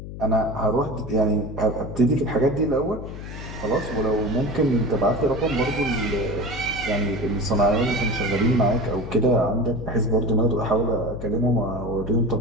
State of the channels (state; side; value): noise; left; hum, 10 dB below the sound